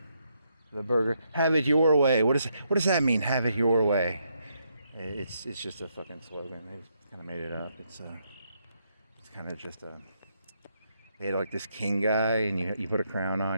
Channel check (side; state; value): both; inverted; correlation -0.77